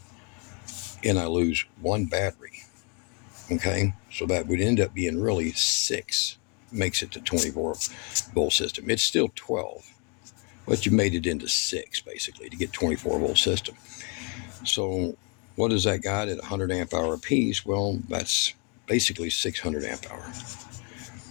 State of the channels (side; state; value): right; quieter; 35.7 dB